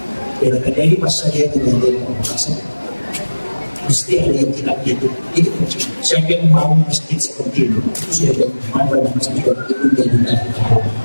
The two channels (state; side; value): inverted; both; correlation -1.00